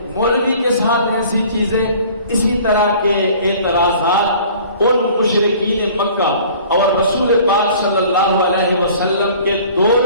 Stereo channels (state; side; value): inverted; both; correlation -0.49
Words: مولوی کے ساتھ ایسی چیزیں، اسی طرح کے اعتراضات ان مشرکین مکہ اور رسول پاک صلی اللہ علیہ وسلم کے